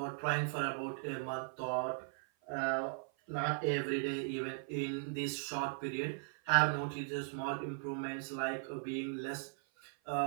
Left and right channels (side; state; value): left; silent; 52 dB below the other